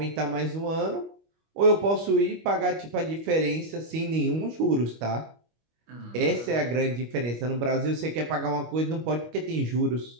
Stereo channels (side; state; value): left; late; 25 ms